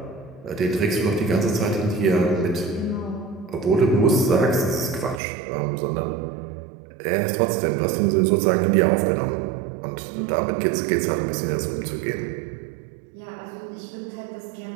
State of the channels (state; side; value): drops out; left; at 5.2 s